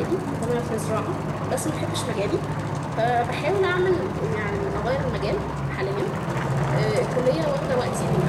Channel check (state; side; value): identical; both; correlation 1.00